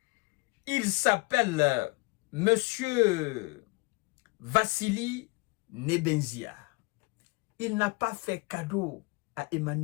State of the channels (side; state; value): right; quieter; 26.6 dB